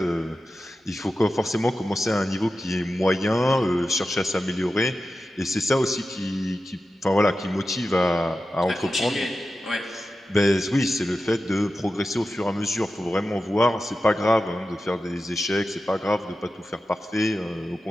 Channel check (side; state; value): both; normal; correlation 0.92